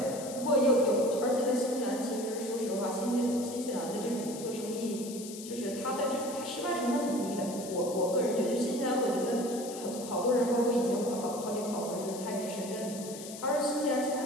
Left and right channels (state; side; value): noise; left; hiss, 12 dB below the sound